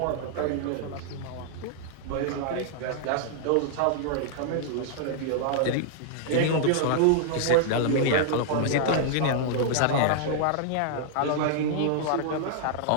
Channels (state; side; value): different; both; correlation -0.01